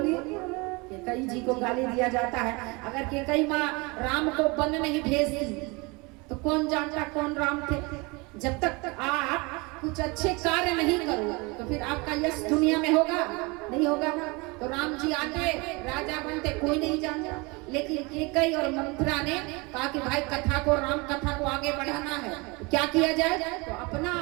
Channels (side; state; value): left; quieter; 27.0 dB